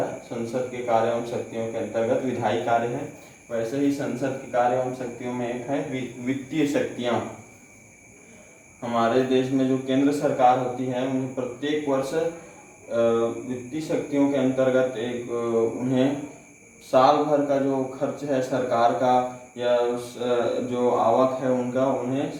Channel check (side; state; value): both; identical; correlation 1.00